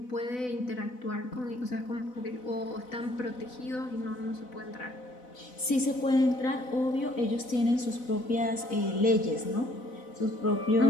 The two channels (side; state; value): right; late; 4.0 ms